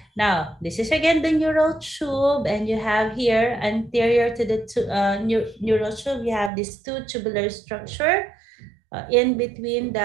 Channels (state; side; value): drops out; left; at 6.5 s